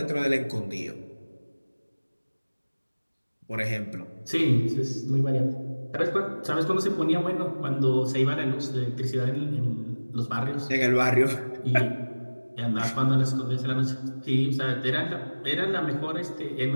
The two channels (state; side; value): inverted; both; correlation -1.00